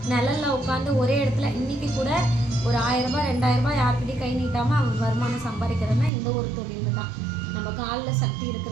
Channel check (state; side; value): drops out; left; at 6.1 s